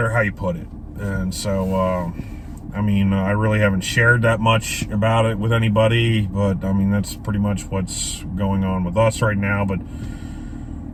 how you put it. And so, I mean, I really haven't shared that much about it with anybody, but I mean, that's pretty much what's going on with us right now. But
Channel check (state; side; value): identical; both; correlation 1.00